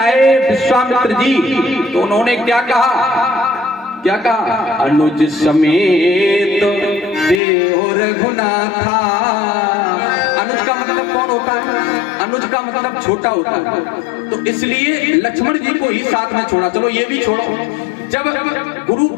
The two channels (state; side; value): drops out; right; at 7.4 s